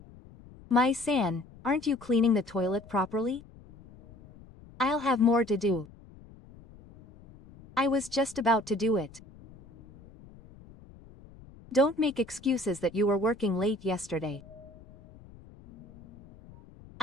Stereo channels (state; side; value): noise; left; rumble, 21 dB below the sound